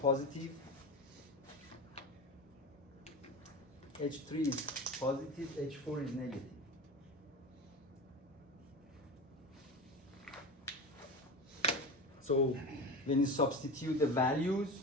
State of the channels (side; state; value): both; normal; correlation 0.27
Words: H3 is positive, H4 is negative. So when you substitute the